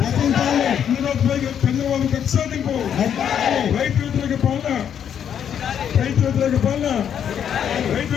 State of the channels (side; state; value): right; quieter; 8.8 dB